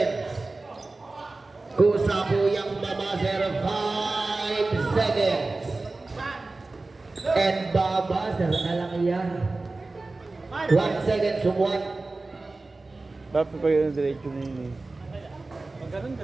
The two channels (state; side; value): quieter; left; 3.3 dB